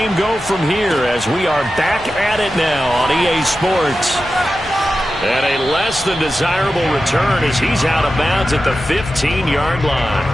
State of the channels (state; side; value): normal; both; correlation 0.92